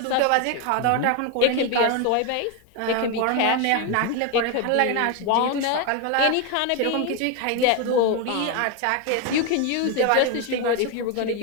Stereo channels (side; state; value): both; different; correlation 0.02